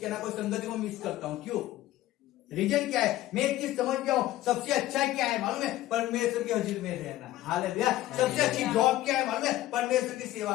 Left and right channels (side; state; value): right; quieter; 15.3 dB